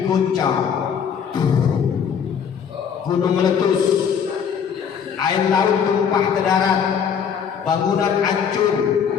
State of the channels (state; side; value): quieter; right; 7.4 dB